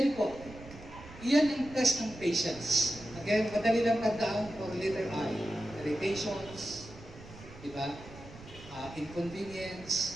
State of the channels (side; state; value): right; noise; rumble, 17 dB below the sound